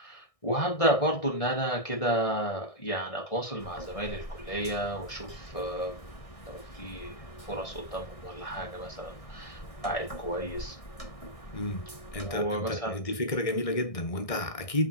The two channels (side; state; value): right; late; 1.6 ms